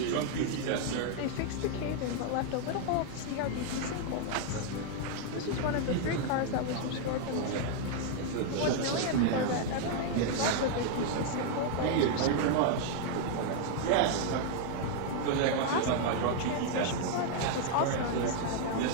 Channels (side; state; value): both; different; correlation 0.00